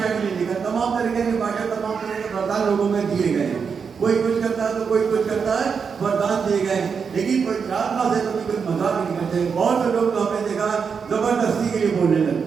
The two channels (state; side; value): quieter; left; 6.0 dB